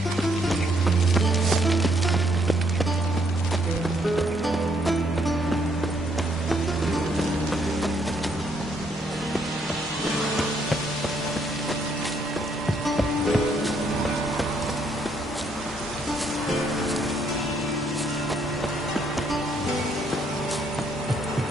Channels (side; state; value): both; normal; correlation 0.71